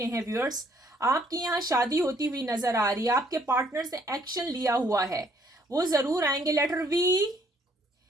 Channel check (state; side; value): normal; both; correlation 0.64